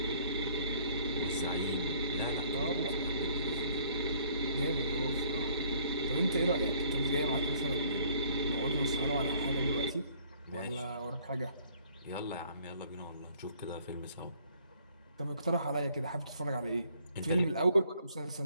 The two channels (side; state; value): both; inverted; correlation -0.60